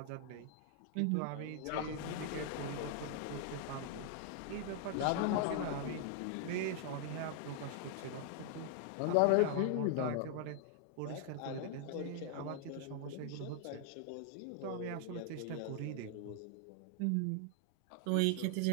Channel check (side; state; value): both; different; correlation 0.00